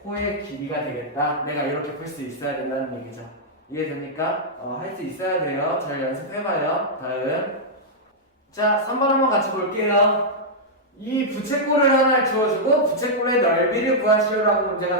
호의 길이가 되겠다. 내가 이렇게 풀 수 있어야 된다는 얘기죠. 이해됩니까? 할 수 있어야 돼요. 잘 연습해봐요. 다음. 자, 3번 한번 같이 볼게요. 이 부채꼴을 하나 주어주고 부채꼴의 넓이를 구하시오라고 문제가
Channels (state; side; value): normal; both; correlation -0.08